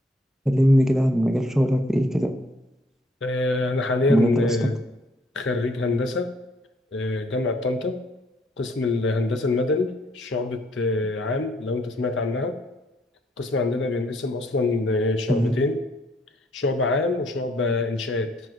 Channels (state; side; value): normal; both; correlation 0.67